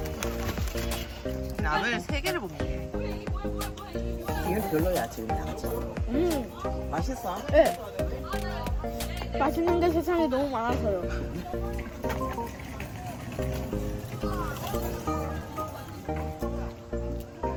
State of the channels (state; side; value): identical; both; correlation 1.00